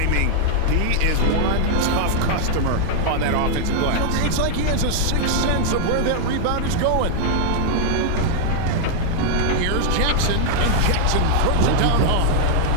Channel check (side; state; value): both; different; correlation -0.01